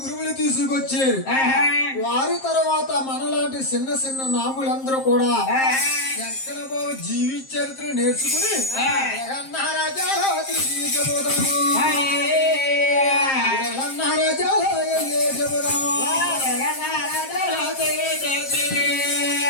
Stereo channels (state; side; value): late; right; 7.5 ms